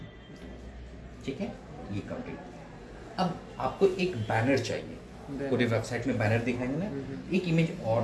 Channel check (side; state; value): both; identical; correlation 1.00